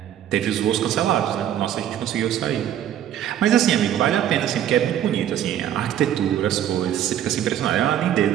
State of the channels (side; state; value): left; quieter; 10.8 dB